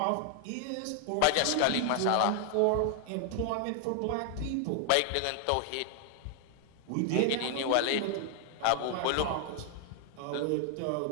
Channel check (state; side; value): different; both; correlation 0.00